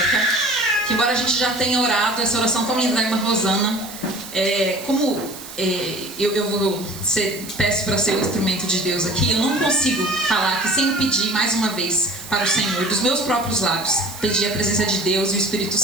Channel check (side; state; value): right; noise; hiss, 14 dB below the sound